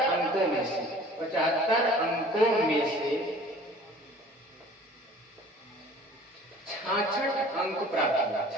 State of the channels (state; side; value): normal; both; correlation 0.48